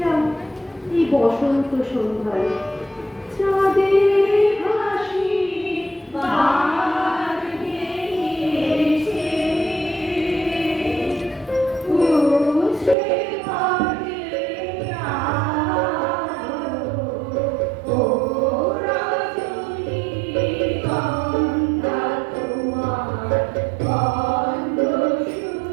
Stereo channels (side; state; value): left; drops out; at 13.0 s